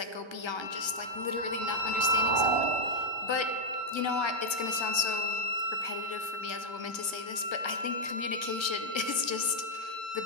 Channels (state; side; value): late; right; 1.3 ms